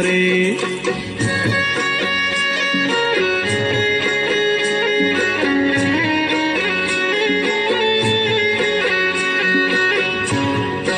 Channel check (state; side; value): identical; both; correlation 1.00